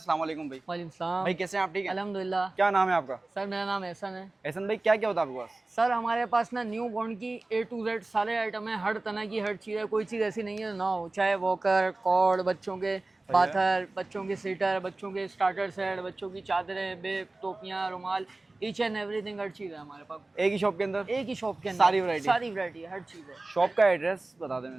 वालेकुम भाई। वालेकुम सलाम भाई, कैसे हैं आप? ठीक है अल्हम्दुलिल्लाह। क्या नाम है आपका? सर मेरा नाम एहसन है। एहसन भाई, क्या क्या होता है आपके पास? सर हमारे पास ना न्यू बॉर्न की A to Z सारे आइटम है, हर तरह की हर चीज़ है, कोई चीज़ ऐसी नहीं है ना हो। चाहे वॉकर, कॉर्ड, बच्चों के बाथर, बच्चों के सीटर, बच्चों के स्टार्टर सेट, बच्चों की चादरें, बेब, टोपियाँ, रुमाल, ईच एंड एवरीथिंग, हर चीज़ है हमारे पास। एक ही शॉप के अंदर? एक ही शॉप के अंदर सारी वैरायटी है, हर चीज़ है। शॉप का एड्रेस बता दें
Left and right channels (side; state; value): left; quieter; 3.1 dB